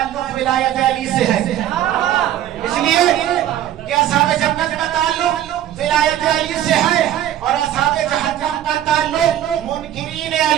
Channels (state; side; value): quieter; left; 11.8 dB